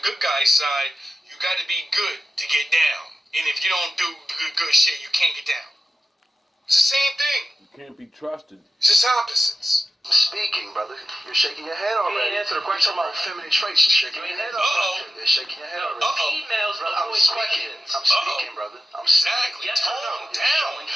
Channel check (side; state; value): both; normal; correlation 0.93